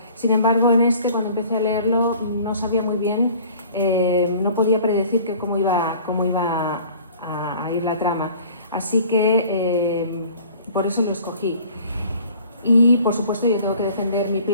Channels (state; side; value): inverted; both; correlation -0.49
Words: Sin embargo, en este, cuando empecé a leerlo, no sabía muy bien, no podía predecir cómo iba a ir la trama. Así que por eso lo escogí. Y, por supuesto, yo tengo que defender mi